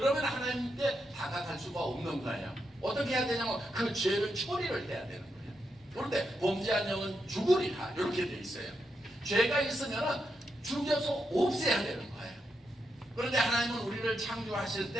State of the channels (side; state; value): both; normal; correlation 0.84